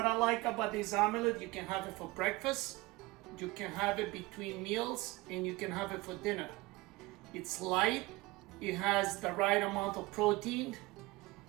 I like about this omelet, you can have it for breakfast, you can have it between meals, and you can have it for dinner. It's light, it has the right amount of protein,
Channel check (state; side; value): quieter; left; 21.3 dB